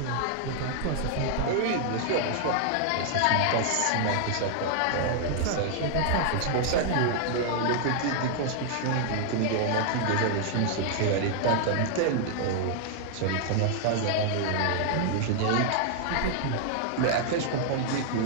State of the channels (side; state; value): both; different; correlation 0.00